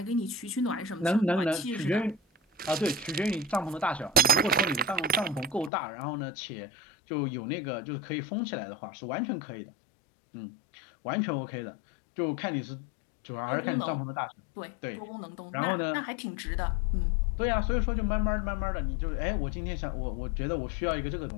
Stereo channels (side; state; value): right; drops out; at 5.7 s